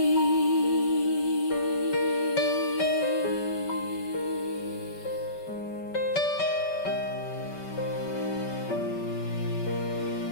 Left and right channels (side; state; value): right; late; 5.2 ms